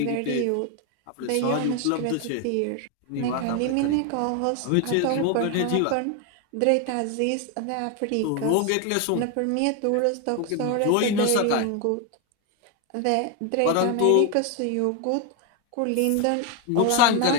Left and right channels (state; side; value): different; both; correlation 0.01